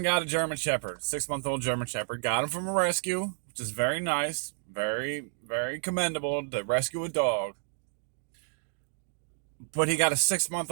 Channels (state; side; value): silent; left; digital silence